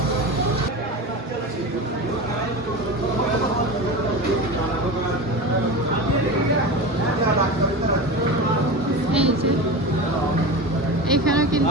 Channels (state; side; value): normal; both; correlation 0.27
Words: এই যে এখানেও